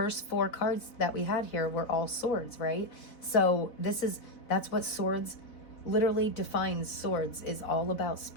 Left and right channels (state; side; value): late; right; 4.0 ms